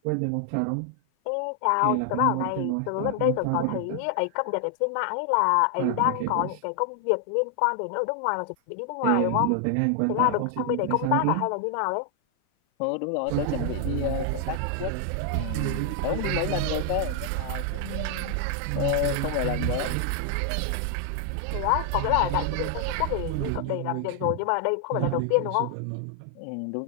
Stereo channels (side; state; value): both; different; correlation 0.00